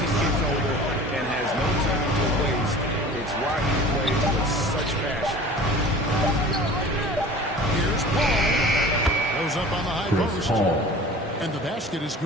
he's getting older and has no time to waste. It's why he plays with such passion. Here's Paul. Goes up on the high post. Paul. And the basket is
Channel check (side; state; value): both; normal; correlation 0.41